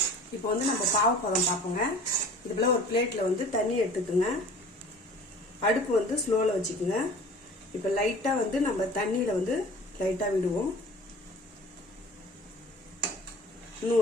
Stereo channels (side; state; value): both; normal; correlation 0.44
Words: இப்போ நம்ம பாவு பதம் பார்ப்போங்க. இது போல ஒரு பிளேட்ல தண்ணி எடுத்துக்குங்க. அடுப்பு ஸ்லோல வச்சுக்குங்க. இப்போ லைட்டா நம்ம தண்ணியில லைட்டா விடுவோம்.